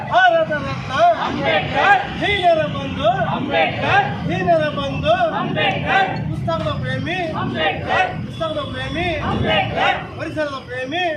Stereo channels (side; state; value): both; identical; correlation 1.00